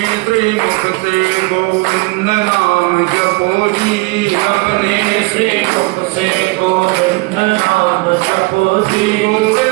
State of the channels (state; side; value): quieter; left; 25.3 dB